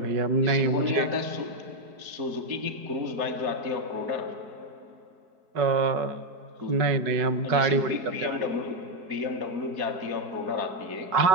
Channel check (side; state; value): left; late; 4.7 ms